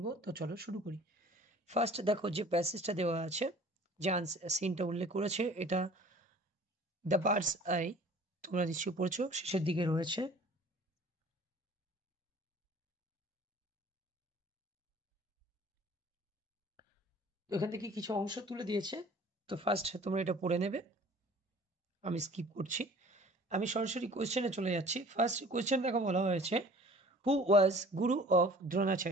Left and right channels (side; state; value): both; normal; correlation 0.48